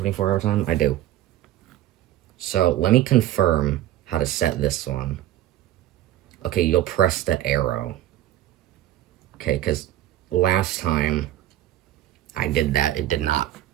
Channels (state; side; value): quieter; left; 13.4 dB